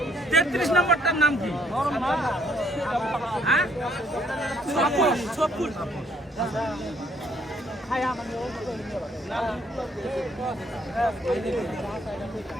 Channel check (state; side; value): normal; both; correlation 0.66